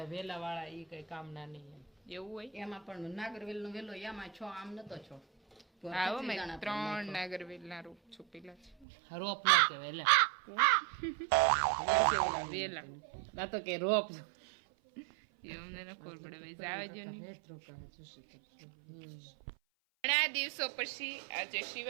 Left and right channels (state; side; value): drops out; left; at 8.8 s